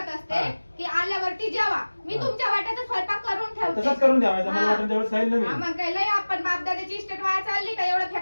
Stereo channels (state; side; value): inverted; both; correlation -1.00